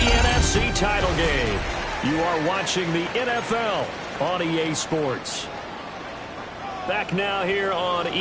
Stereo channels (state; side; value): identical; both; correlation 1.00